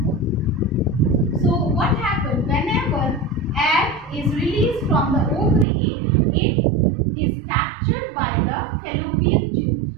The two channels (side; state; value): left; drops out; at 5.7 s